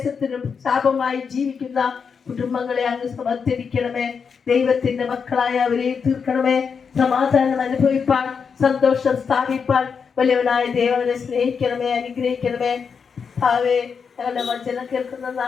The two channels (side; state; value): right; quieter; 6.1 dB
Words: ശാപമായി ജീവിക്കുന്ന കുടുംബങ്ങളെ അങ്ങ് സമർപ്പിക്കണമേ. ദൈവത്തിന്റെ മക്കളായ അവരെ തീർക്കണമേ. സമാധാനം അനുഭവിപ്പാൻ, സന്തോഷം സ്ഥാപിപ്പാൻ വലിയവനായ ദൈവനെ സ്നേഹിക്കണമേ, അനുഗ്രഹിക്കണമേ. ഭാവേ, ഞങ്ങളുടെ വചനം കേൾക്കുന്ന